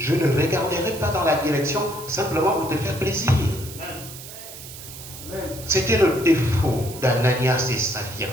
ne regarderai pas dans la direction simplement pour te faire plaisir. C'était le défaut d'Ananias et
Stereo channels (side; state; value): right; noise; hiss, 13 dB below the sound